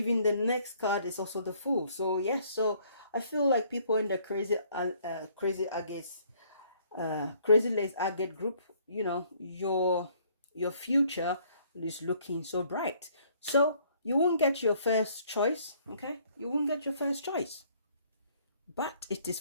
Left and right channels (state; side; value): inverted; both; correlation -0.62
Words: the next card is also the Fool. So yes, so I feel like people in the crazylaceagate group, you know, your future is looking so bright. So you won't get your first choice, okay? You won't get your first choice, but it is